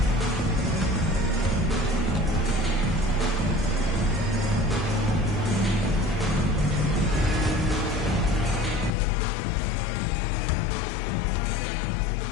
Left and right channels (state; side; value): drops out; right; at 8.9 s